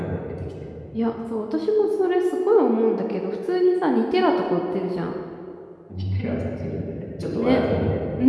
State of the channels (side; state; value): both; identical; correlation 1.00